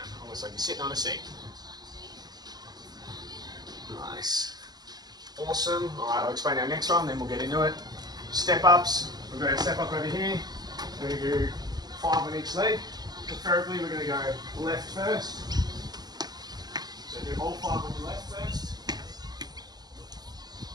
almost like you're sitting on a seat. Nice. Awesome. All right, I'll explain our next one, then we'll get into it. Step ups. We've got our step up over here. We're going to do 5 on each leg. Preferably, we're going to go left first. So do all 5 on the left first.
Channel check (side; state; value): left; late; 0.19 ms